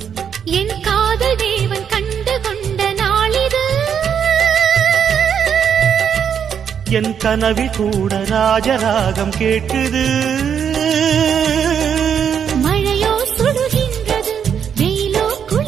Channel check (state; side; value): quieter; left; 7.9 dB